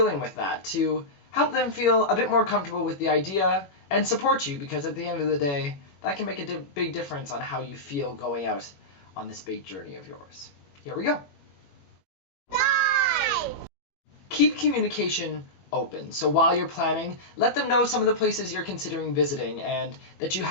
with that to help them feel a bit more comfortable with the idea and support you, because at the end of the day, that can make a big difference on how you feel going out on this big journey of yours. Here we go. 5! Keep communication open. So while you're planning, let them know some of the places you're considering visiting and that you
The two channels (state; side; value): late; right; 21 ms